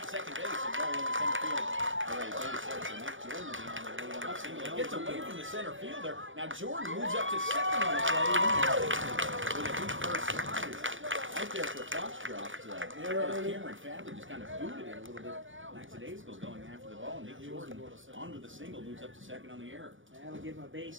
second base and roll into center field. All right, base hit. So Nick Jordan will be on the lead off single. He gets away from the center fielder. Now Jordan moves up to second on the play. With a deep first slide. Right there for Foxcroft. Cameron Fadley just kind of booted it a little bit lackadaisical going after the ball. Nick Jordan on with the single, moves up to second on the error. That'll give him a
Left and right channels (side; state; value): left; late; 0.57 ms